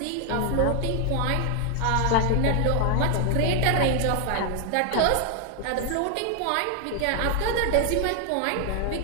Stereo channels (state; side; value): different; both; correlation 0.00